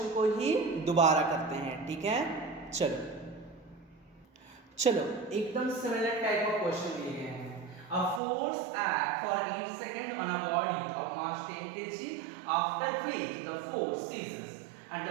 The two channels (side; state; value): left; drops out; at 8.2 s